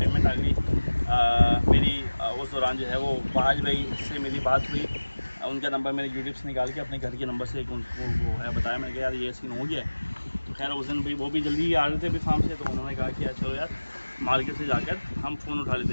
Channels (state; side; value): inverted; both; correlation -1.00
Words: आ गई मेरी। उस दौरान जो है वो फहाज भाई से मेरी बात हुई, उनका नंबर मैंने यूट्यूब से निकाल के अपने घर के नंबर से उनको वो है बताया, मैंने कहा यार ये सीन हो गया है। तो खैर उस दिन भाई वो भी जल्दी आ रहे थे अभी फार्म से, तो उन्होंने कहा कि यार चलो यार मार्केट से जाकर हम फ़ोन उठा लेते